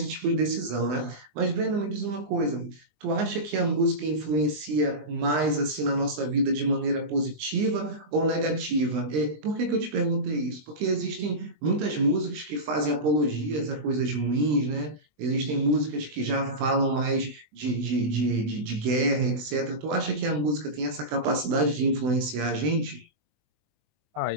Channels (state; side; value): late; left; 20 ms